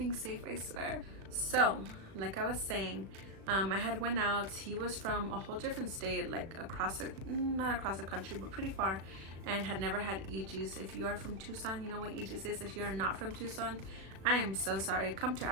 safe, I swear. So, like I was saying, I had went out. He was from a whole different state, like not across the country, but pretty far, and had never had EGs. If you are from Tucson, you know what EGs is. If you are not from Tucson, I am so sorry. Come to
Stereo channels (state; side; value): late; left; 36 ms